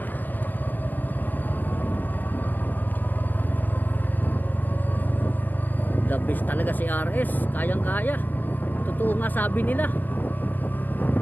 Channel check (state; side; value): late; right; 0.085 ms